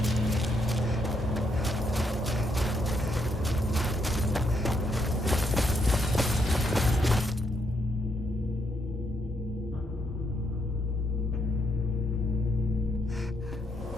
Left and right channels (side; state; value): both; normal; correlation 0.76